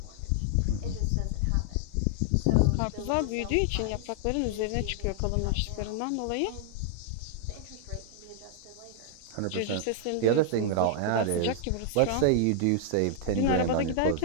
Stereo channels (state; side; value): different; both; correlation 0.00